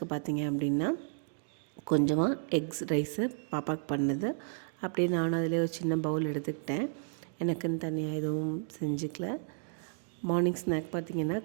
பார்த்திங்க அப்படின்னா கொஞ்சமாக எக்ஸ் ரைஸு பாப்பாவுக்கு பண்ணது அப்படியே நானும் அதிலே ஒரு சின்ன பவுல் எடுத்துக்கிட்டேன். எனக்குன்னு தனியாக எதுவும் செஞ்சுக்கல. மார்னிங் ஸ்நாக் பார்த்திங்கன்னா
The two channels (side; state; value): left; silent; digital silence